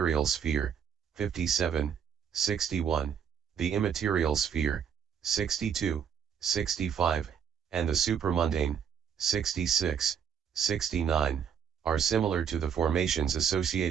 sphere, 57, 61, the immaterial sphere, 62, 65, and the supramundane, 66, 69, are similar to the formations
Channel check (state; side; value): quieter; left; 7.8 dB